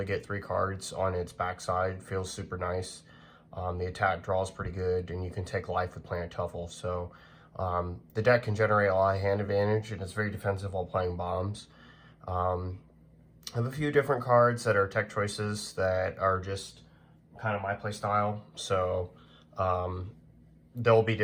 get 3 cards on its backside feels super nice. The attack draw is pretty good, and you can take life with Planet Tuffle. So the deck can generate a lot of hand advantage, and it's very defensive while playing bombs. I have a few different cards that are tech choices that are just kind of my play style. So they'll be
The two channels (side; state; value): both; identical; correlation 1.00